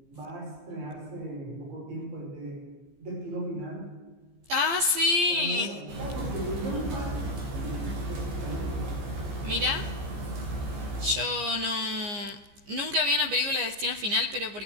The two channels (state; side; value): late; left; 15 ms